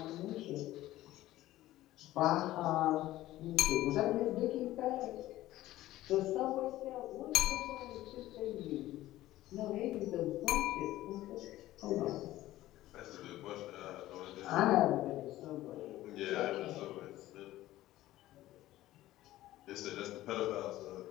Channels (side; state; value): right; quieter; 15.4 dB